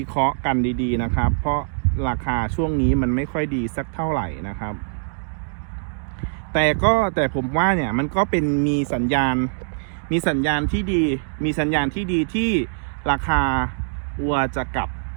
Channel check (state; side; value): silent; left; digital silence